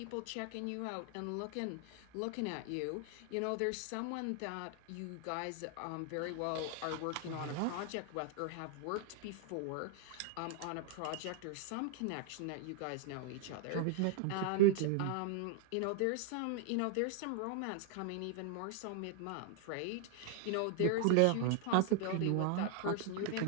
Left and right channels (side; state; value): both; different; correlation 0.00